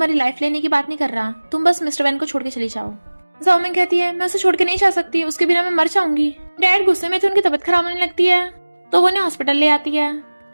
लाइफ लेने की बात नहीं कर रहा, तुम बस मिस्टर वैन को छोड़ के चली जाओ। जाओमेंग कहती है मैं उसे छोड़ के नहीं जा सकती, उसके बिना मैं मर जाऊंगी। डैड गुस्से में थे, उनकी तबीयत खराब होने लगती है तो वो उन्हें हॉस्पिटल ले आती है।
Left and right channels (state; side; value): inverted; both; correlation -1.00